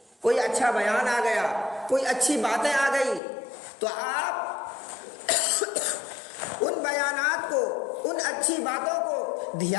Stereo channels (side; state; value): right; drops out; at 3.2 s